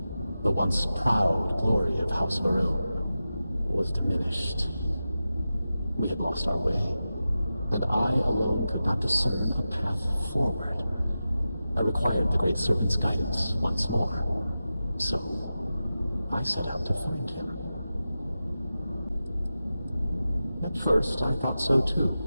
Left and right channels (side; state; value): both; inverted; correlation -0.93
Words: The once proud glory of House Varun was diminished. We had lost our way, and I alone could not discern a path forward. I required the Great Serpent's guidance once more, so I set out to find him. At first, I thought so too.